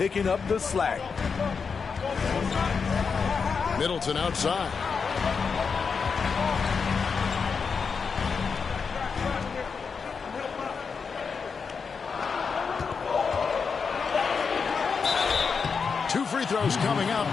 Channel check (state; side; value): quieter; right; 5.5 dB